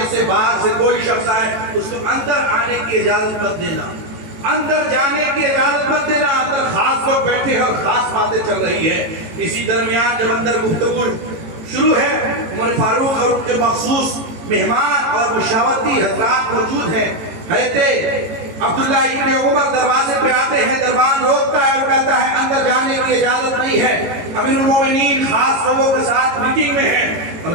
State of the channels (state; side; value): late; left; 18 ms